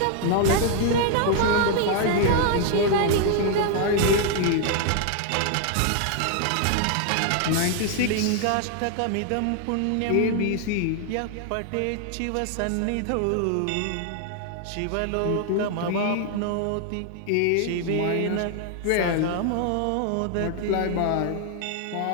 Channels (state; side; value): different; both; correlation 0.00